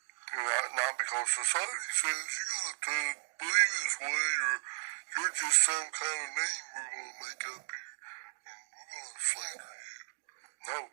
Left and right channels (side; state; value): left; silent; digital silence